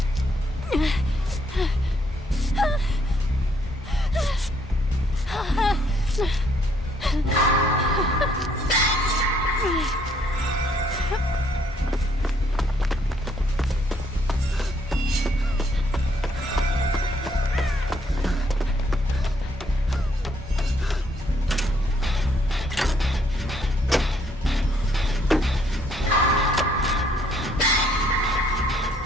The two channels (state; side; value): normal; both; correlation 0.68